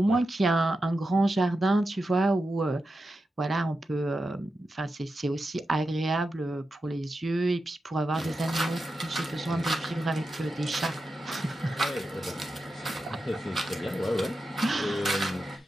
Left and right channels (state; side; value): normal; both; correlation 0.90